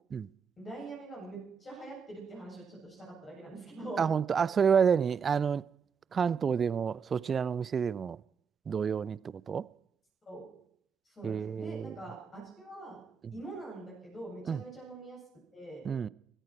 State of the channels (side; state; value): left; quieter; 6.3 dB